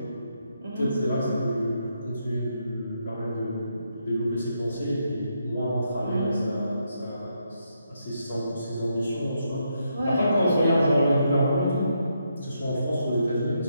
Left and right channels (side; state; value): both; inverted; correlation -0.79